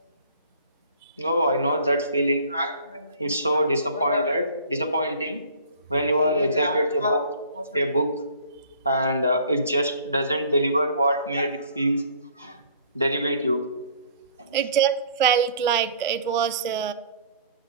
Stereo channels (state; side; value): inverted; both; correlation -0.52